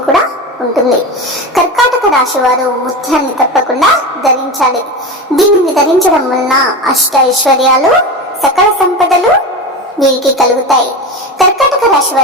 కూడా ఉంటుంది. కర్కాటక రాశి వారు ముత్యాన్ని తప్పకుండా ధరించాలి. దీనిని ధరించడం వలన అష్ట ఐశ్వర్యాలు, సకల సంపదలు వీరికి కలుగుతాయి. కర్కాటక రాశి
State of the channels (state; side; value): normal; both; correlation 0.24